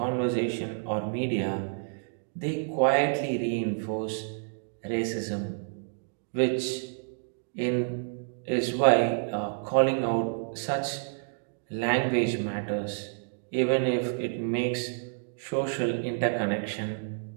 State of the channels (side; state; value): left; silent; digital silence